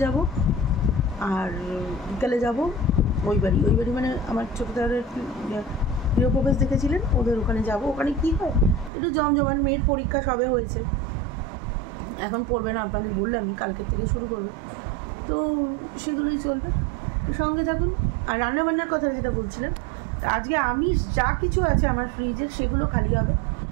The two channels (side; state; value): left; drops out; at 8.9 s